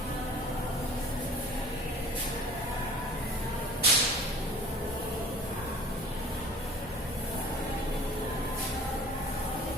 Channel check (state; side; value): normal; both; correlation 0.47